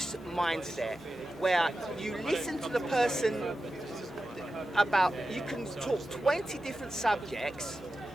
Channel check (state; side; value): normal; both; correlation 0.92